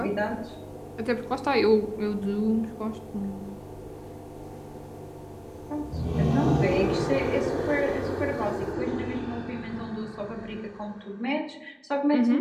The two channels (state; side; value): identical; both; correlation 1.00